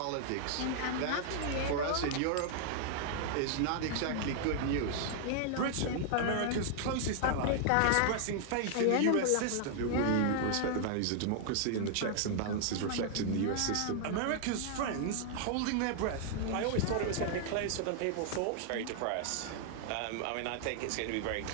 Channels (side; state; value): both; different; correlation 0.00